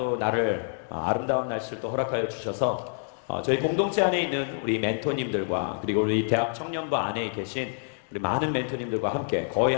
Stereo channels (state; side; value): silent; right; digital silence